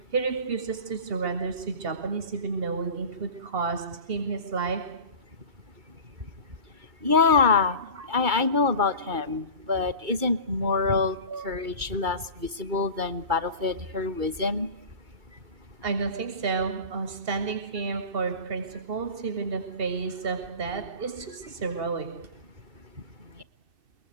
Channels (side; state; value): left; late; 2.3 ms